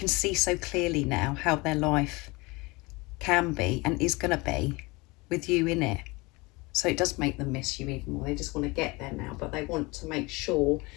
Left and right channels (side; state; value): right; quieter; 24.7 dB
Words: see so clearly now how their life can be and is going to be with you in it. So it does make them miss you even more. They just want to get there now, but they want to make sure